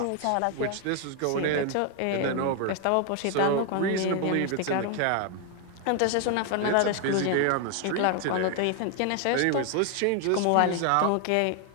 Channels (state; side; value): different; both; correlation 0.00